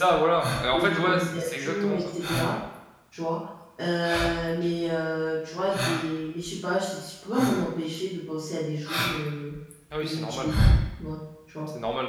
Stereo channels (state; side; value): identical; both; correlation 1.00